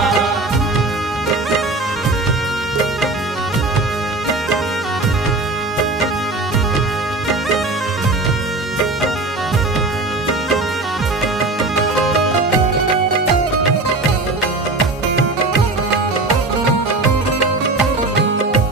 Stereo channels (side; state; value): left; quieter; 3.2 dB